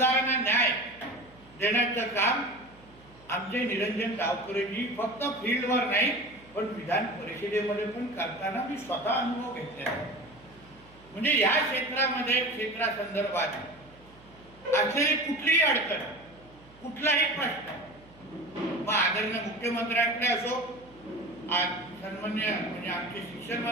न्याय देण्याचं काम आमचे निरंजन गावकरेजी फक्त फील्डवर नाही पण विधान परिषदेमध्ये पण करताना मी स्वतः अनुभव घेतला. म्हणजे या क्षेत्रामध्ये क्षेत्रासंदर्भात असलेली कुठलीही अडचण, कुठलाही प्रश्न मग आदरणीय मुख्यमंत्र्यांकडे असो, सन्मान्य म्हणजे आमचे शिक्षण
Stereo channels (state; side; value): noise; right; hum, 25 dB below the sound